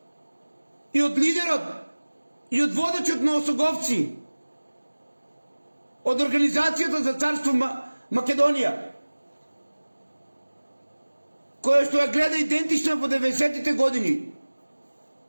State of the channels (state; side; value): inverted; both; correlation -1.00